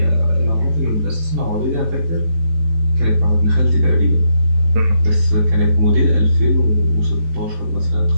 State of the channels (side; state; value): left; late; 18 ms